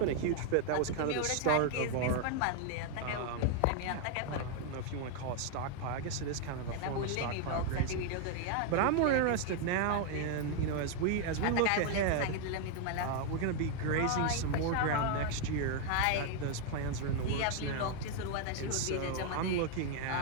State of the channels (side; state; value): both; different; correlation 0.00